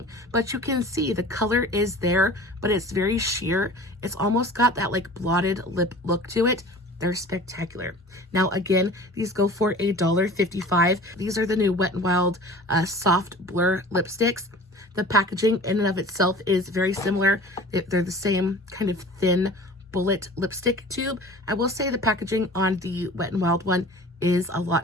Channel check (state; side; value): normal; both; correlation 0.41